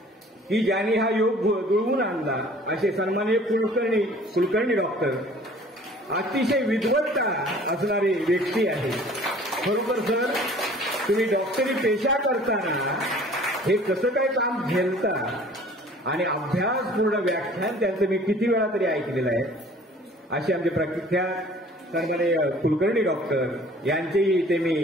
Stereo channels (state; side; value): normal; both; correlation 0.50